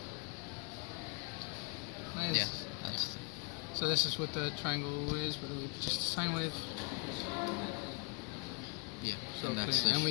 Nice. Yeah, that's So this is what the triangle is, but it's just a sine wave. yeah. So And that's the and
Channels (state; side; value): quieter; right; 33.6 dB